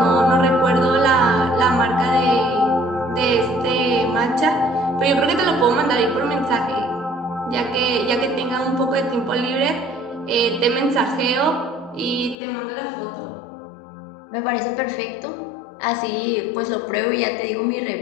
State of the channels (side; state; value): right; drops out; at 12.4 s